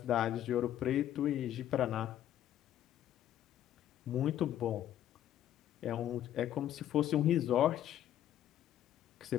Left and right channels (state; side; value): quieter; right; 11.6 dB